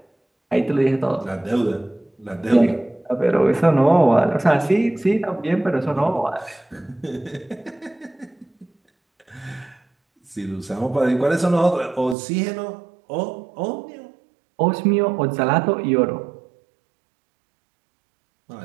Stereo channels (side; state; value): left; drops out; at 12.2 s